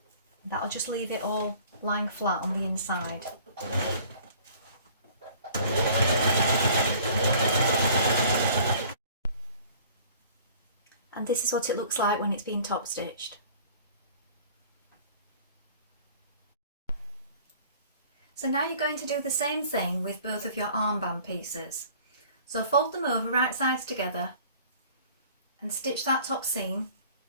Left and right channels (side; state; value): both; inverted; correlation -0.50